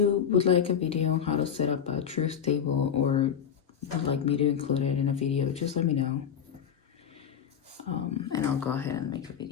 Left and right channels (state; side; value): quieter; right; 8.2 dB